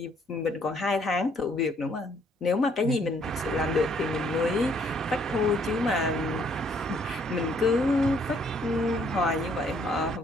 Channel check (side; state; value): both; normal; correlation 0.65